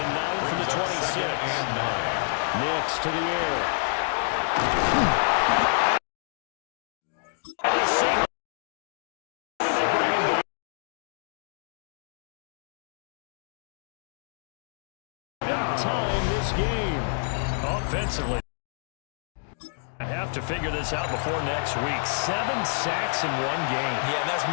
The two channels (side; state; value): right; silent; digital silence